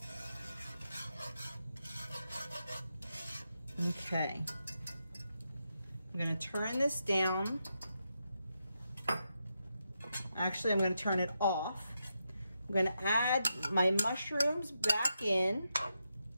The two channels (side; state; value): both; inverted; correlation -0.85